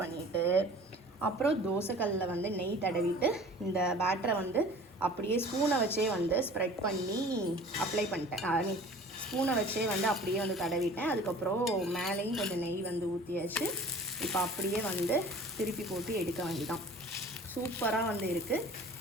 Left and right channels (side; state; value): both; normal; correlation 0.45